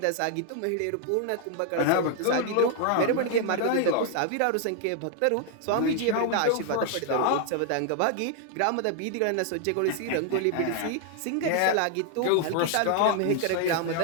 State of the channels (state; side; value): different; both; correlation 0.00